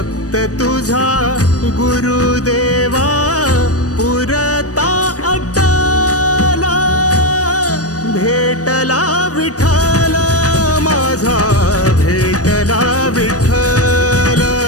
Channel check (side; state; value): right; late; 0.67 ms